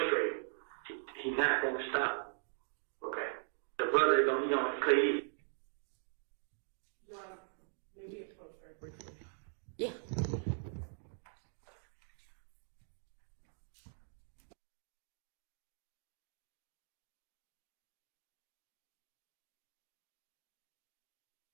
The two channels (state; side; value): silent; left; digital silence